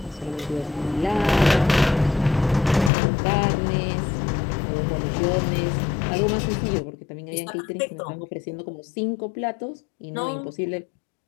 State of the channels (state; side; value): drops out; right; at 2.9 s